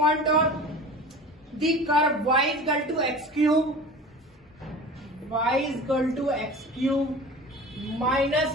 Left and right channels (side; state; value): both; normal; correlation 0.37